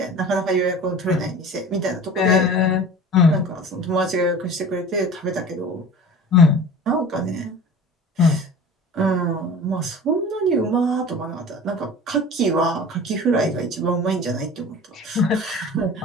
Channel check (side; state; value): both; normal; correlation 0.39